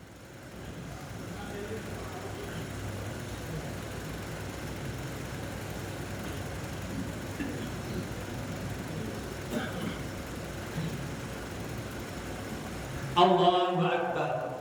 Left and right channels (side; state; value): both; identical; correlation 1.00